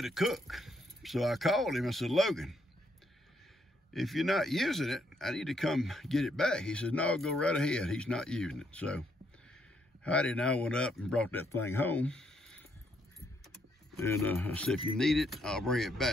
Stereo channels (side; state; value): both; normal; correlation 0.74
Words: to cook. So I called him. I said, Logan, if you're not using it, I need to come get it back. He said, no, go right ahead. He's not using it. So Heidi and I went up and brought that thing home. And I said, if you need it, I'll bring it